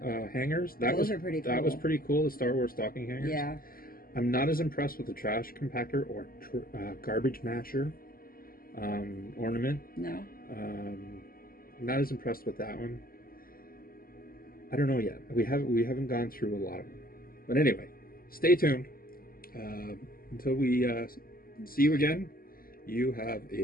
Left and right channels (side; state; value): right; late; 0.42 ms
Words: hangers. Those are pretty That was cool. pretty cool. The Star Wars stocking hangers. Yeah. I'm not as impressed with the trash compactor or garbage masher ornament. No. Not as impressed with that one. I don't know yet. We haven't gone through a lot of them. But anyway, stay tuned. Until we see you again, you have